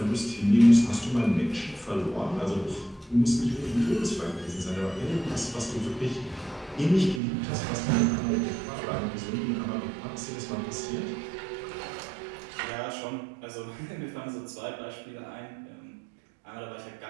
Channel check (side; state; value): left; drops out; at 7.2 s